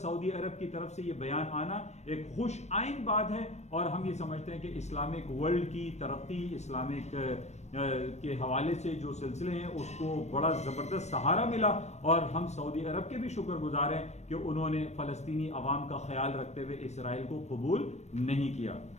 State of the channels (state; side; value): late; right; 0.32 ms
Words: अरब की तरफ से ये बयान आना एक खुश आइन बात है और हम ये समझते हैं कि इस्लामिक वर्ल्ड की तरक्की, इस्लामिक के हवाले से जो सिलसिले हैं उसको बड़ा ज़बरदस्त सहारा मिला और हम सऊदी अरब के भी शुक्रगुजार हैं कि उन्होंने फ़लस्तीनी अवाम का ख्याल रखते हुए इसराइल को कबूल नहीं किया।